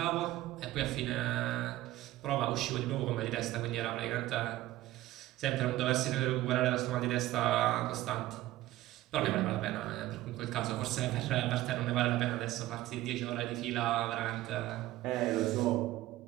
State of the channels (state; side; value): quieter; left; 16.1 dB